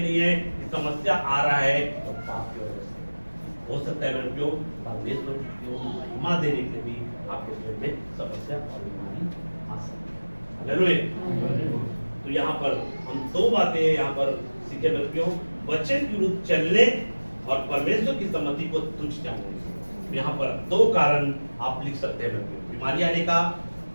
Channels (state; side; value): inverted; both; correlation -1.00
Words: नहीं है कि समस्या आ रहा है तो पाप की वजह से। हो सकता है मेरे प्रियो परमेश्वर को महिमा देने के भी आपके जीवन में समस्या और बीमारी आ सकती है। हालेलुया। तो यहाँ पर हम दो बातें यहाँ पर सीखे मेरे प्रियो, वचन के विरुद्ध चलने और परमेश्वर की सम्मति को तुच्छ जानने। यहाँ पर दो कारण आप लिख सकते हैं मेरे प्रियो। बीमारी आने का